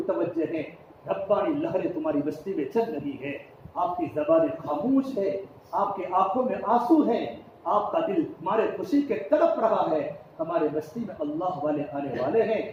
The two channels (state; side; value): identical; both; correlation 1.00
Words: ہیں, ربانی لہریں تمہاری بستی میں چل رہی ہے. آپ کی زبانیں خاموش ہے, آپ کی آنکھوں میں آنسو ہیں, آپ کا دل تمہارے خوشی کے تڑپ رہا ہے. ہمارے بستی میں اللہ والے آنے والے ہیں,